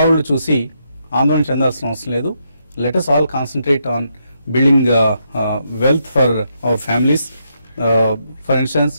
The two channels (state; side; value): inverted; both; correlation -0.80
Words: చూసి ఆందోళన చెందాల్సిన అవసరం లేదు. Let us all concentrate on building wealth for our families. For instance